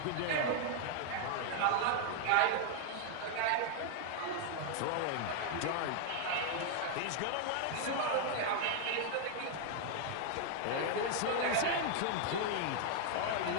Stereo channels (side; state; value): both; different; correlation 0.00